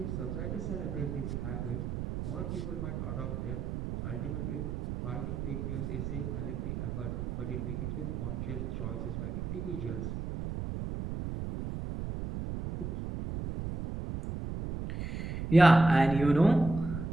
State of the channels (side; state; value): right; noise; rumble, 4 dB below the sound